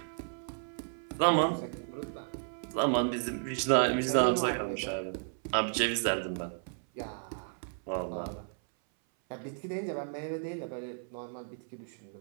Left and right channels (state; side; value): silent; left; 56 dB below the other